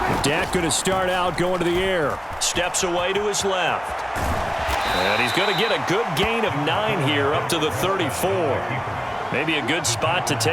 Dak going to start out going to the air. Steps away to his left. And he's going to get a good gain of 9 here up to the 34. Maybe a good spot to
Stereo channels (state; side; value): identical; both; correlation 1.00